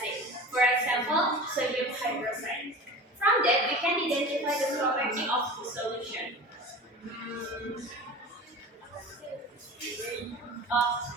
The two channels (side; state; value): both; normal; correlation 0.35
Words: For example, sodium hydroxide. From that, we can identify the property of the solution.